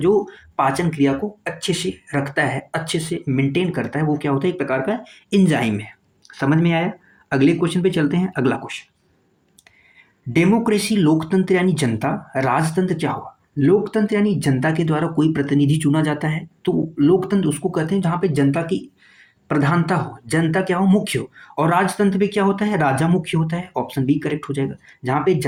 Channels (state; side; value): identical; both; correlation 1.00